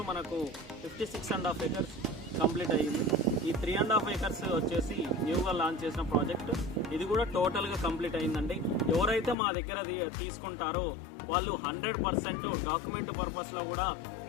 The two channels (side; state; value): right; drops out; at 9.3 s